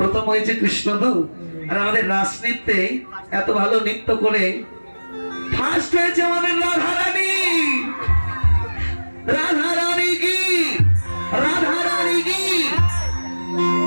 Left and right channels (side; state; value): both; inverted; correlation -1.00